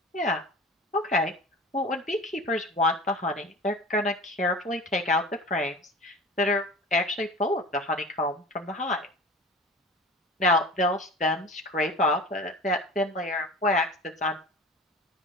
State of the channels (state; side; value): normal; both; correlation 0.37